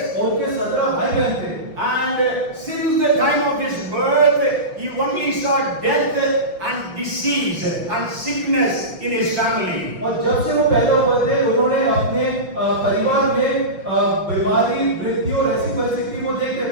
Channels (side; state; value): left; late; 5.8 ms